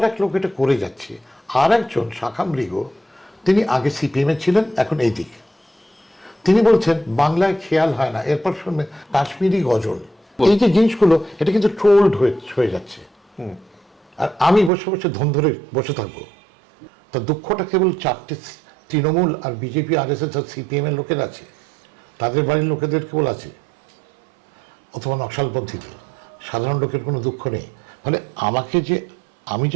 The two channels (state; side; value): drops out; left; at 14.7 s